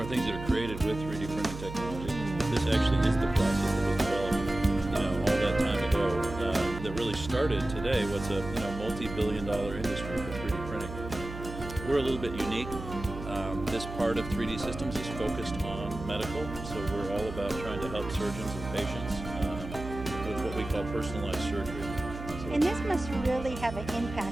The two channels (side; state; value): right; noise; hum, 10 dB below the sound